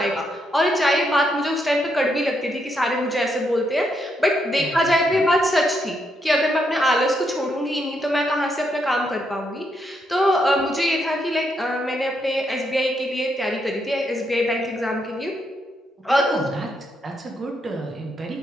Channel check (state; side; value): normal; both; correlation 0.78